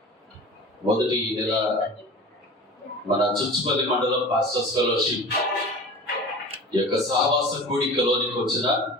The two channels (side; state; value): both; normal; correlation 0.37